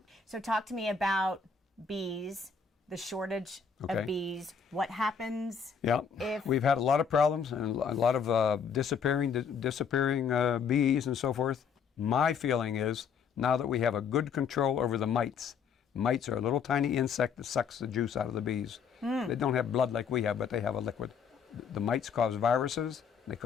So talk to me about bees, the shortage of bees. What happens if... We've had a lot of problems and a lot of disappearing bees and so forth. My feeling is, now that we have a good control over the mites. Mites are a little tiny insect that sucks the juice out of the bees. They don't have blood like we have, but they have a liquid. The mites cause viruses. They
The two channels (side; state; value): right; quieter; 6.4 dB